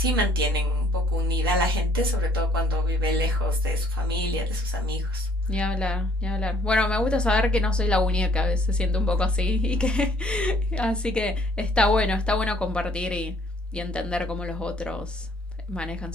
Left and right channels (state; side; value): normal; both; correlation 0.61